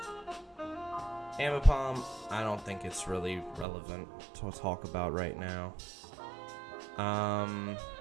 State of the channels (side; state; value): left; drops out; at 3.7 s